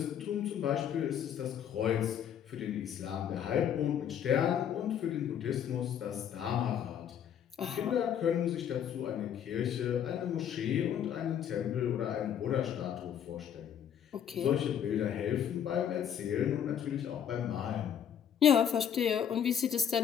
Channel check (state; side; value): quieter; right; 9.1 dB